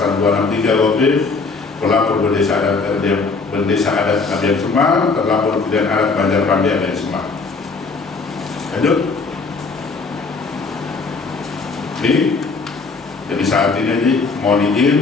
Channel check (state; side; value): quieter; right; 4.3 dB